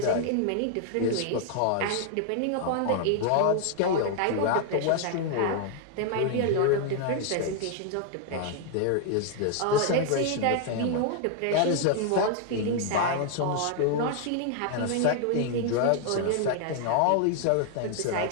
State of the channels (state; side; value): different; both; correlation 0.00